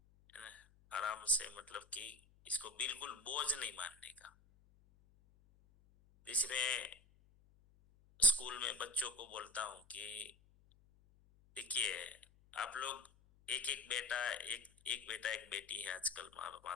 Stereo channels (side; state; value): left; noise; hum, 28 dB below the sound